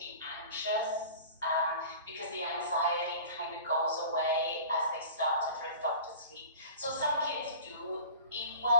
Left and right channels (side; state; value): both; inverted; correlation -0.41